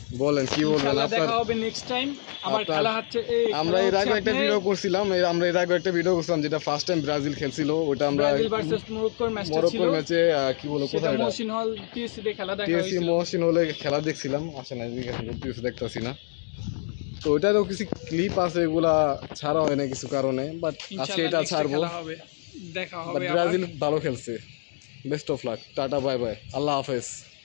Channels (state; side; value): silent; right; 60 dB below the other